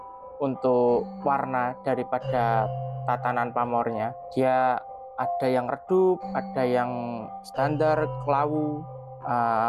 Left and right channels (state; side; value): identical; both; correlation 1.00